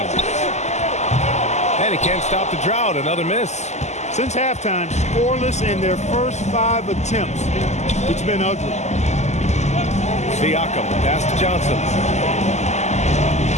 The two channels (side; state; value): right; late; 0.33 ms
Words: And he can't stop the drought, another miss. Since halftime, scoreless in their first 5 attempts. It's been ugly. Siakam, pass to Johnson.